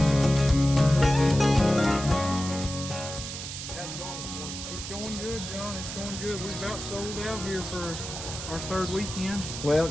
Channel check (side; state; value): right; noise; hiss, 8 dB below the sound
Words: It's going good, John. It's going good. We've about sold out here for our third weekend. Well,